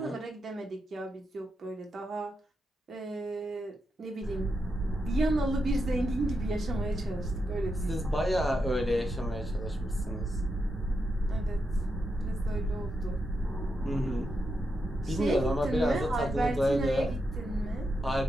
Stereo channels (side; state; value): both; normal; correlation 0.85